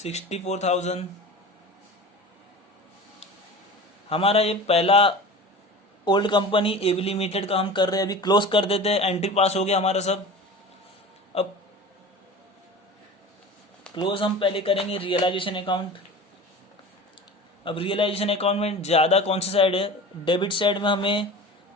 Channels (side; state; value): both; normal; correlation 0.35